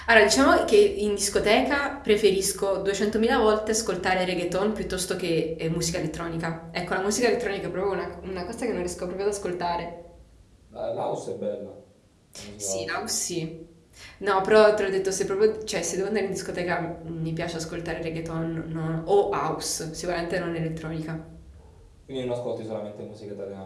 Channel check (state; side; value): identical; both; correlation 1.00